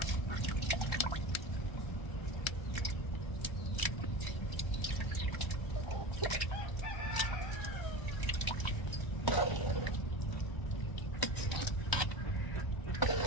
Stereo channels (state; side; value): late; right; 1.1 ms